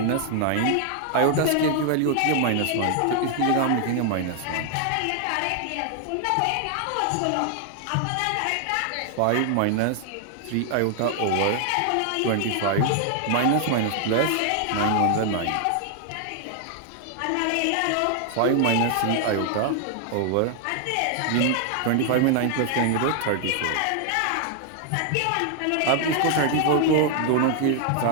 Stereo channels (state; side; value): different; both; correlation 0.00